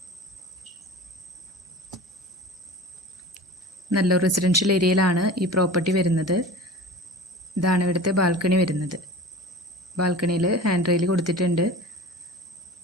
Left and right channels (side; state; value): both; normal; correlation 0.37